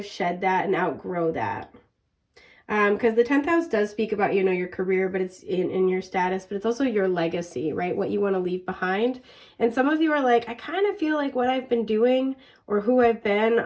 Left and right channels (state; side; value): identical; both; correlation 1.00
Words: shed that and outgrow that. Because the 10th house does speak about, you know, your career, but it's in your status, but it's also your legacy, right? What you want to leave behind. And some of you are like, I kind of feel like what I've been doing or who I've been,